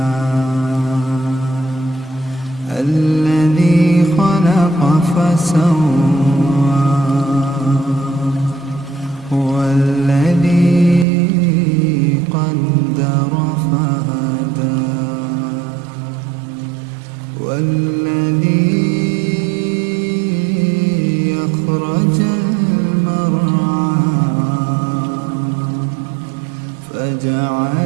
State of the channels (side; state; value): left; drops out; at 11.1 s